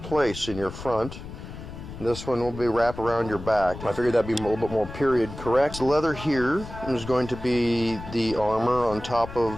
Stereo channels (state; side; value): noise; left; rumble, 12 dB below the sound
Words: in your front. This one will be wrapped around your back. I figured that'd be a little bit more period correct. The leather here is going to be the armor on top